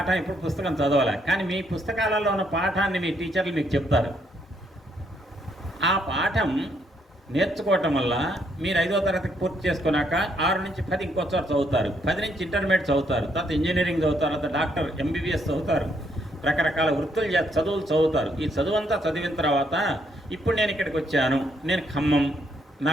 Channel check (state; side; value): normal; both; correlation 0.73